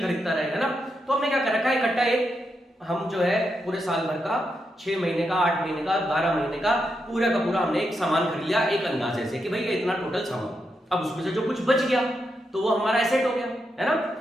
रहेगा ना, तो हमने क्या कर रखा है, इकट्ठा एक हम जो है पूरे साल भर का 6 महीने का, 8 महीने का, 12 महीने का पूरा हमने एक सामान खरीद लिया एक अंदाजे से कि भाई ये इतना टोटल सामान, अब उसमें से जो कुछ बच गया तो वो हमारा एसेट हो गया, है ना।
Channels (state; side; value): normal; both; correlation 0.84